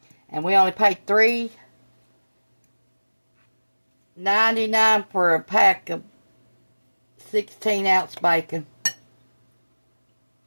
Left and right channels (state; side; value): inverted; both; correlation -1.00